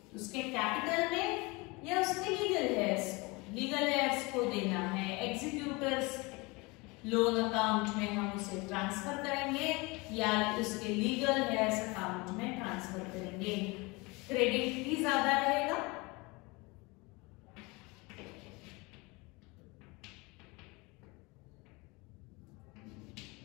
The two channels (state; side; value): quieter; right; 25.7 dB